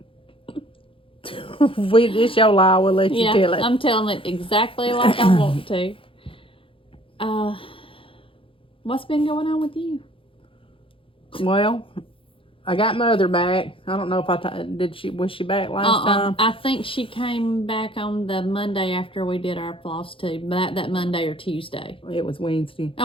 It's your lie, we'll let you tell it. I'm telling it exactly like I want to. What's been going on with you? Well, I got Mother back. I don't know if was she back last time? I think she came back on the Monday after we did our Flosstube. That Monday or Tuesday. It was Wednesday.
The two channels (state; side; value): late; right; 0.26 ms